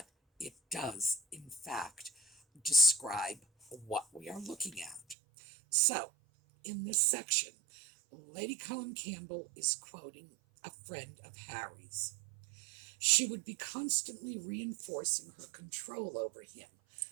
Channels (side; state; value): left; drops out; at 5.2 s